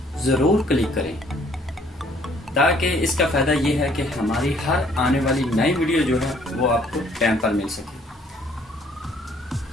ज़रूर क्लिक करें, ताकि इसका फ़ायदा ये है कि हमारी हर आने वाली नई वीडियो जो है वो आपको टाइम पर मिल सके।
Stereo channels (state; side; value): normal; both; correlation 0.62